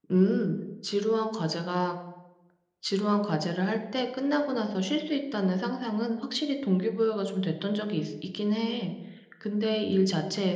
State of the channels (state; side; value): identical; both; correlation 1.00